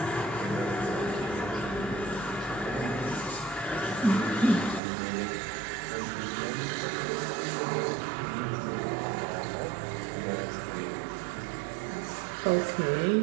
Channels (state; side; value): drops out; left; at 4.8 s